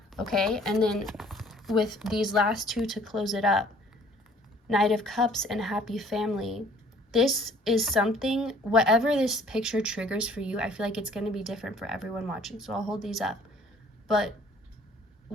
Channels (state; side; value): normal; both; correlation 0.56